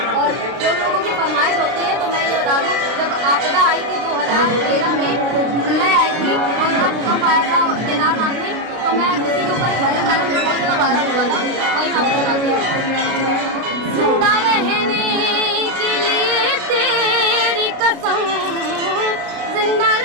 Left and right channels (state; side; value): late; left; 32 ms